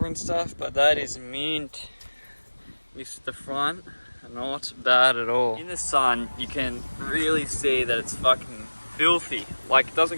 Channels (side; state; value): both; inverted; correlation -1.00